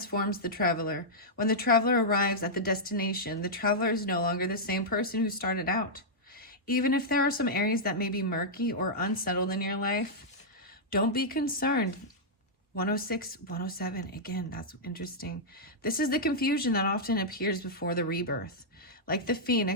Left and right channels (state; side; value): normal; both; correlation -0.09